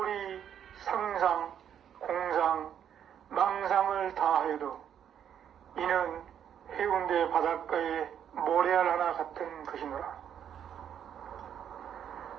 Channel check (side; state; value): left; quieter; 9.1 dB